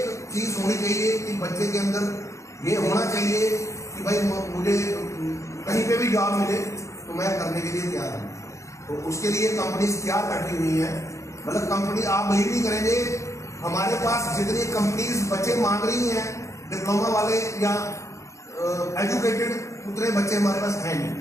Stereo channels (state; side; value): late; right; 0.15 ms